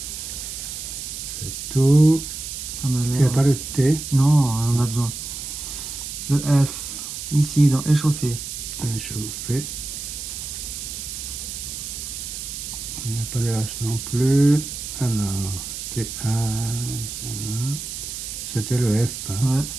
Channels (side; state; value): right; noise; hiss, 7 dB below the sound